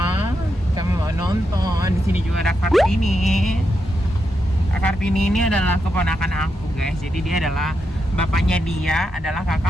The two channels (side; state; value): both; normal; correlation 0.84